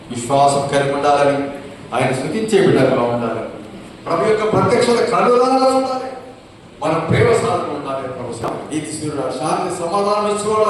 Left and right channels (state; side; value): identical; both; correlation 1.00